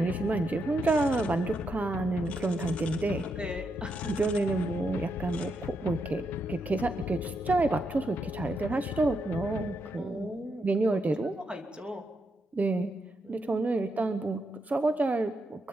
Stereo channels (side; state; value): both; normal; correlation 0.81